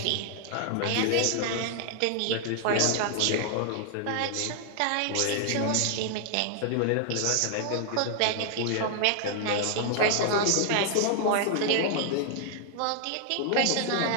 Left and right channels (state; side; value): different; both; correlation 0.00